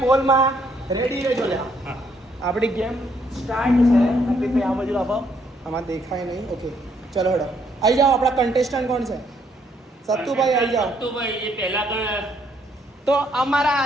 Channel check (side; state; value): both; normal; correlation 0.70